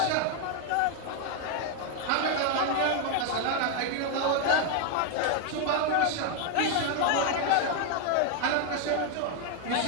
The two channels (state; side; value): different; both; correlation 0.01